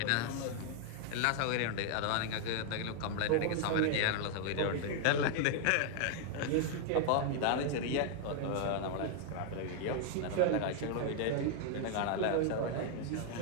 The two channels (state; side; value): different; both; correlation 0.00